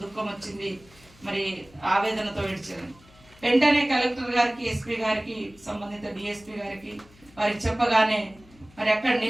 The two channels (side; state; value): left; noise; hum, 26 dB below the sound